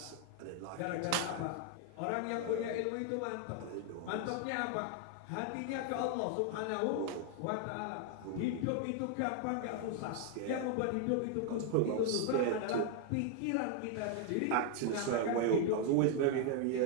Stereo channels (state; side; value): different; both; correlation 0.00